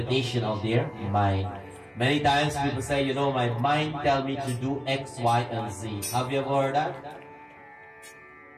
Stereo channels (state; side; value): identical; both; correlation 1.00